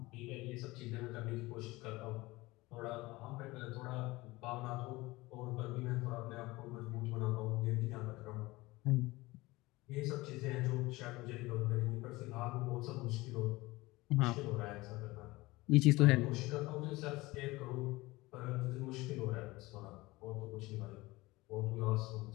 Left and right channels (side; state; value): right; quieter; 20.8 dB